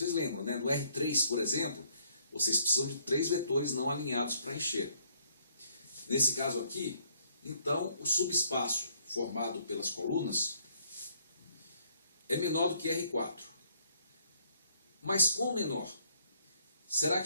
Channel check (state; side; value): inverted; both; correlation -0.66